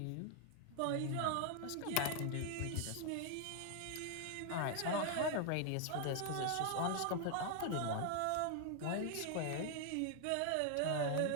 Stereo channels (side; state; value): both; different; correlation 0.00